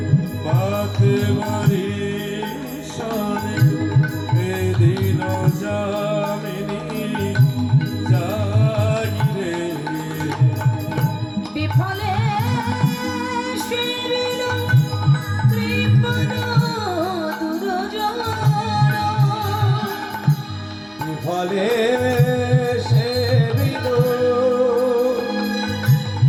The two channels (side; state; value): both; identical; correlation 1.00